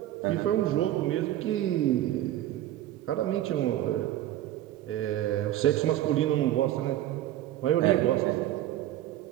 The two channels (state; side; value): quieter; left; 13.4 dB